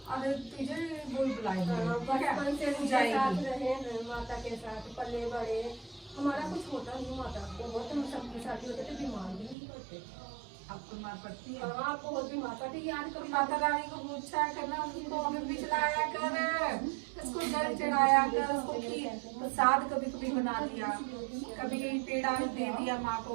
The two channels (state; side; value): drops out; left; at 9.6 s